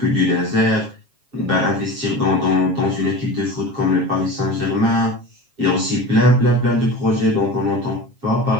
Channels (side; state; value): left; late; 7.3 ms